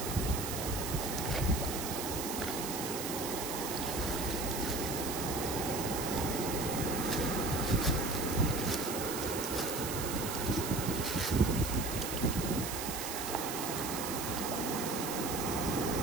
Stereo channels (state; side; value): noise; right; hiss, 5 dB below the sound